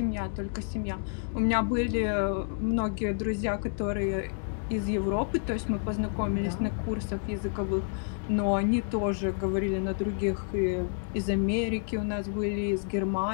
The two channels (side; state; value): right; silent; digital silence